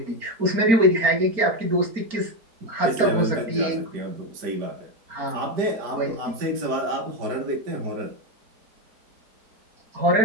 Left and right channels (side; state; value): left; late; 4.4 ms